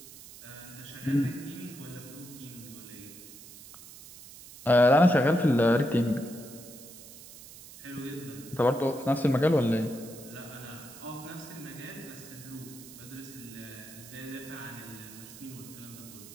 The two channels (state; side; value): noise; right; hiss, 17 dB below the sound